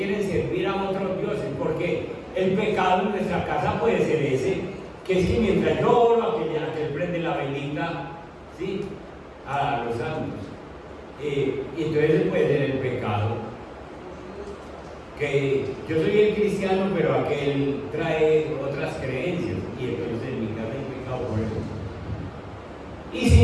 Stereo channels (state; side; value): identical; both; correlation 1.00